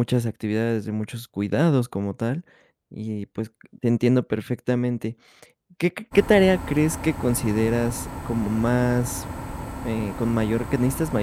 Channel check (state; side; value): identical; both; correlation 1.00